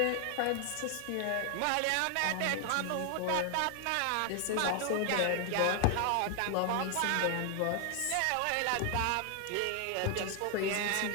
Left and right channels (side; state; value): both; different; correlation 0.00